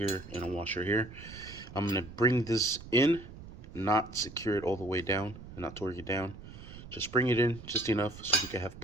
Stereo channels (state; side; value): noise; right; rumble, 15 dB below the sound